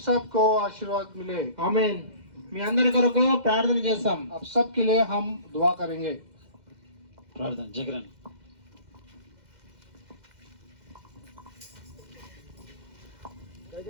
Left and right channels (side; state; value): left; late; 2.1 ms